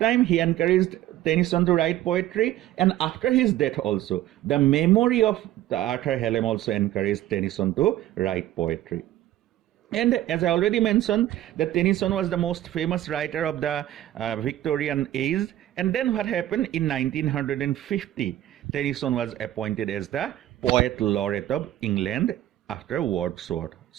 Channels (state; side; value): quieter; left; 13.6 dB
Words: he encouraged Tennyson to write poetry, and after his death also, the memory of Arthur Hallam also encouraged Tennyson to write poetry. And as I already mentioned, that Tennyson was the most famous writer of the Victorian age. And then what happened? In 1950, Tennyson was appointed as the Poet Laureate of England after Wordsworth.